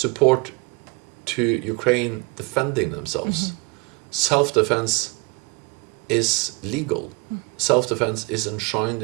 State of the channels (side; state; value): left; quieter; 28.0 dB